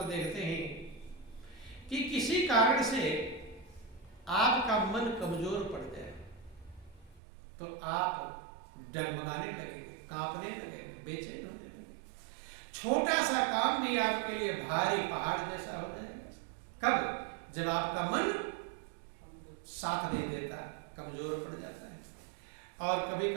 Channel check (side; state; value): left; drops out; at 7.2 s